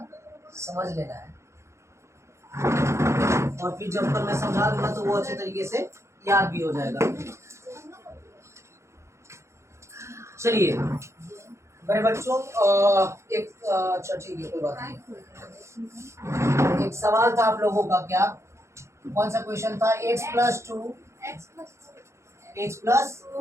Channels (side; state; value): left; late; 0.14 ms